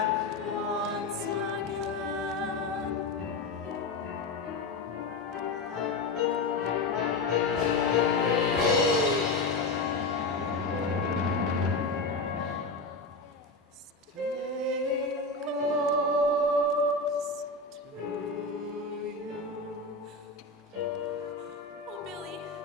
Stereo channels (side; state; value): right; quieter; 3.4 dB